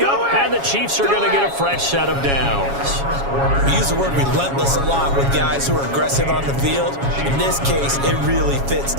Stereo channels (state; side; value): late; left; 7.2 ms